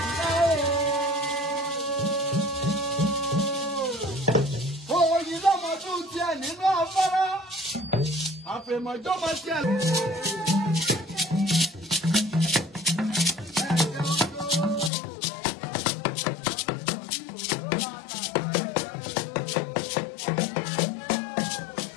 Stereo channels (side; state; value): right; drops out; at 14.9 s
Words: Òyìn lọ́mọ tún tiẹ̀ nínú afárá. Àfẹ̀mọ̀jọ́mọ tiẹ̀.